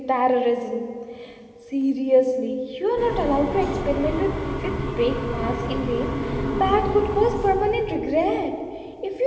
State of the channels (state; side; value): identical; both; correlation 1.00